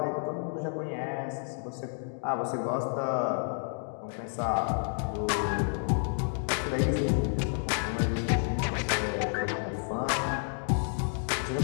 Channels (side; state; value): right; silent; 56 dB below the other